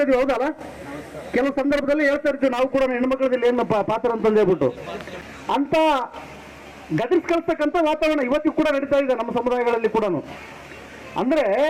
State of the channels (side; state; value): both; identical; correlation 1.00